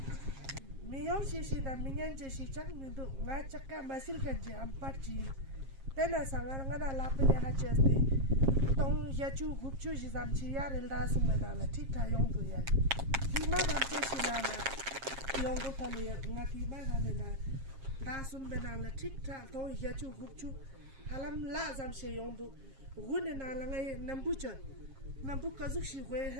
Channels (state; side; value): late; left; 7.4 ms